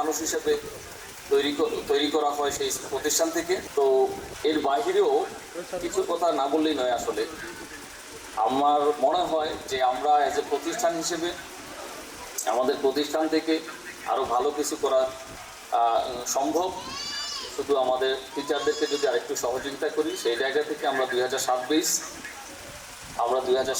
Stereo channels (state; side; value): identical; both; correlation 1.00